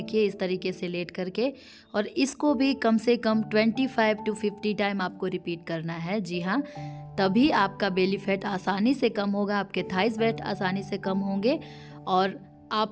इस तरीके से लेट करके, और इसको भी कम से कम 25 to 50 टाइम आपको रिपीट करना है। जी हाँ, तभी आपका बेली फैट आसानी से कम होगा, आपके थाइस वेट आसानी से कम होंगे। और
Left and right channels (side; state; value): both; identical; correlation 1.00